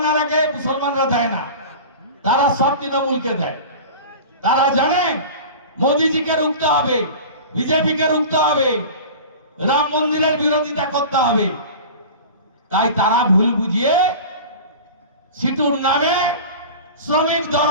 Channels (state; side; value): inverted; both; correlation -0.35